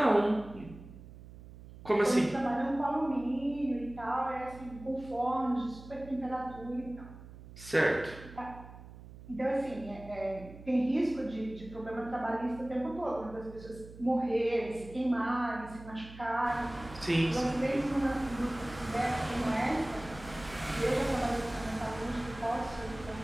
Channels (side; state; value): right; noise; hum, 16 dB below the sound